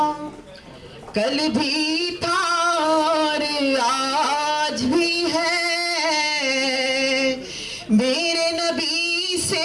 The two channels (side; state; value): both; identical; correlation 1.00